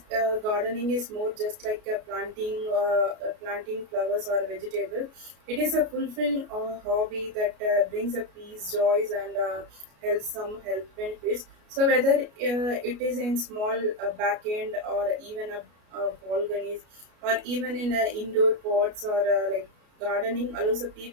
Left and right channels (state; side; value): late; left; 33 ms